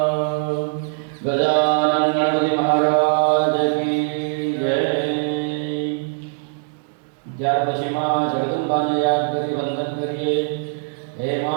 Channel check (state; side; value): silent; left; digital silence